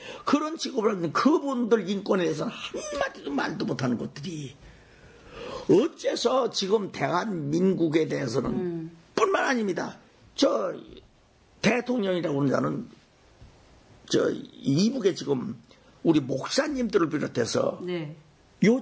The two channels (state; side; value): identical; both; correlation 1.00